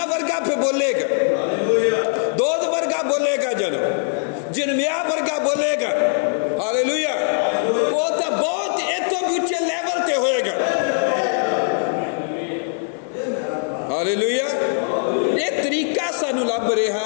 वर्गा फिर बोलेगा, दूध वर्गा बोलेगा, जो जिरमिया वर्गा बोलेगा, हालेलुया, वो तो बहुत इतों ऊंचे लेवल पे होएगा। हालेलुया। ये तरीका सानू लभ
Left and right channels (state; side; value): silent; right; digital silence